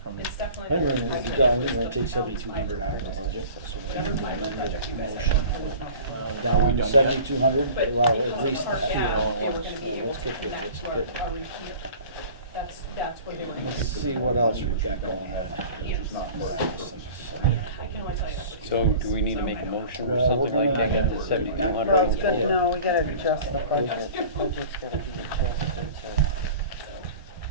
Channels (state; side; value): inverted; both; correlation -0.42